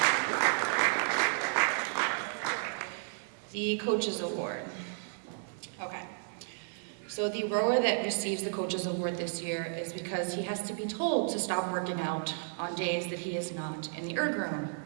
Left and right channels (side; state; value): left; silent; 56 dB below the other